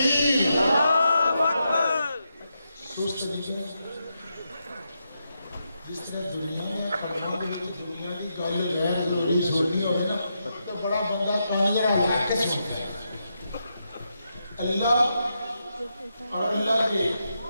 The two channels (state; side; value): inverted; both; correlation -0.84